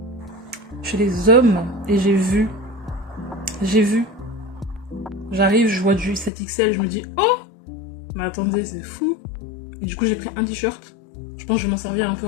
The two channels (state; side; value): drops out; right; at 6.3 s